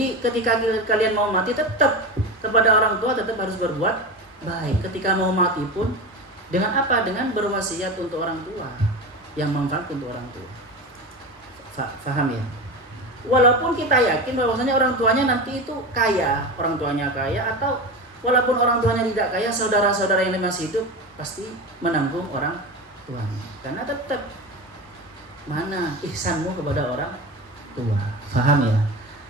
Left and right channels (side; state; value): both; normal; correlation 0.25